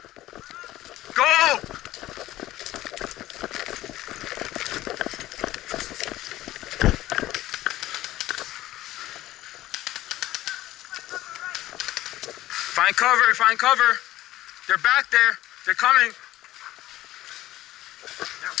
Go. Find cover, find cover. They're back there. They're coming. They're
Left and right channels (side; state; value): right; quieter; 15.5 dB